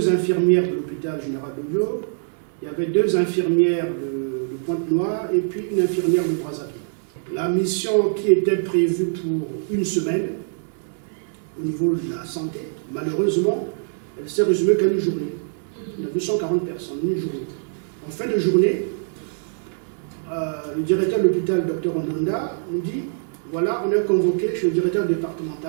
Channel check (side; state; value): left; silent; digital silence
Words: infirmières de l'hôpital général de Lyon, il y avait deux infirmières de Pointe-Noire et puis une infirmière de Brazzaville. La mission qui était prévue pour une semaine au niveau de la santé, malheureusement, elle s'est résumée qu'à une journée. On a vu 140 personnes, une journée. En fin de journée, le directeur de l'hôpital, Dr Ondanda, nous dit voilà, on est convoqué chez le directeur